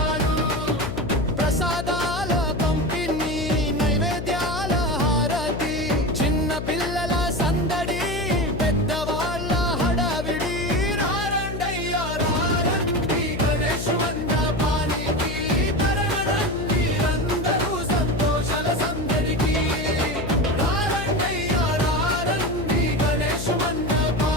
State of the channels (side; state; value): left; noise; hum, 6 dB below the sound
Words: ప్రసాదాల పంపిణీ నైవేద్యాల హారతి చిన్న పిల్లల సందడి పెద్దవాళ్ళ హడావిడి రారండయ్యా రారండి గణేష్ మండపానికి తరగరండి అందరూ సంతోషాల సందడికి రారండయ్యా రారండి గణేష్